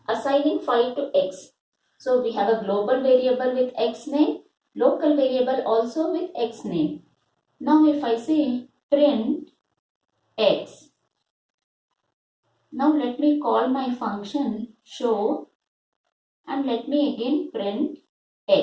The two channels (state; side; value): identical; both; correlation 1.00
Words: assigning 5 to x. So we have a global variable with x name, local variable also with x name. Now if I say print x, now let me call my function show and let me again print